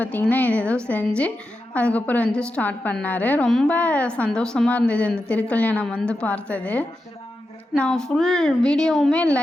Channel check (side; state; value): both; normal; correlation 0.89